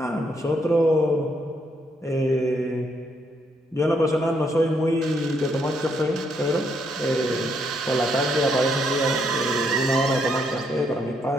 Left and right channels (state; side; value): normal; both; correlation 0.74